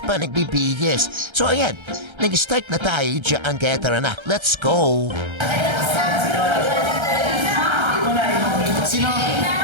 nagbibihis. So ayan, nag-start na tayo dyan kaya tara na, let's go! Sino?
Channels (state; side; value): late; left; 1.3 ms